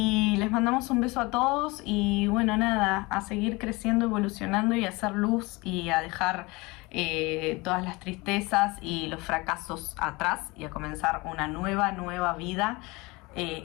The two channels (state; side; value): quieter; right; 24.1 dB